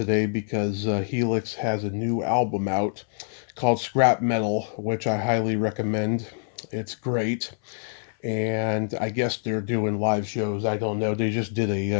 because Helix has a new album out called Scrap Metal, which I highly recommend. It's great. And I guess they're doing live shows. I don't know. They just did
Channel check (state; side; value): silent; right; 61 dB below the other